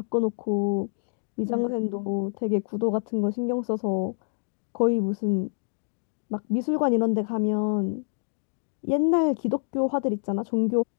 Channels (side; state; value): right; silent; digital silence